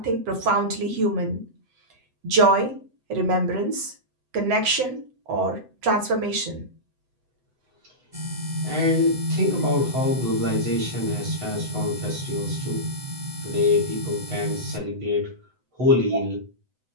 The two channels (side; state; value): left; late; 7.9 ms